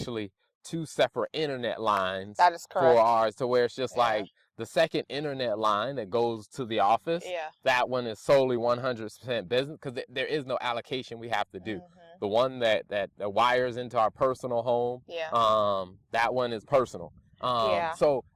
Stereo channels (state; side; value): identical; both; correlation 1.00